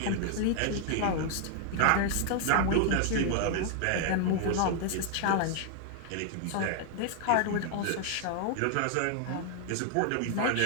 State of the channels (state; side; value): different; both; correlation 0.00